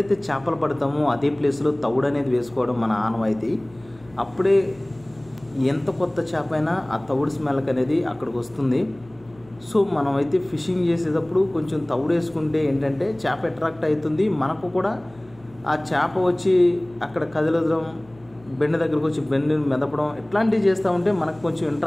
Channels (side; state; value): left; noise; hum, 26 dB below the sound